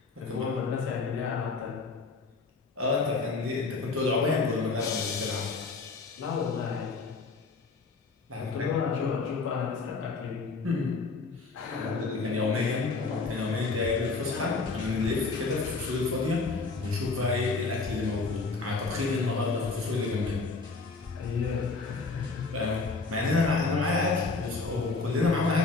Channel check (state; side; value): quieter; right; 4.1 dB